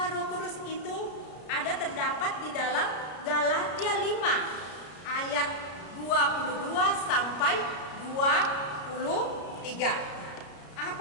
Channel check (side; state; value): right; late; 33 ms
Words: Roh Kudus itu ada terdapat di dalam Galatia 5 ayat 22 sampai 23.